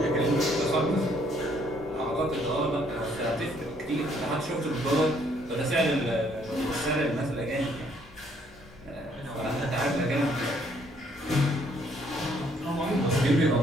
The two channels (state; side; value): normal; both; correlation 0.66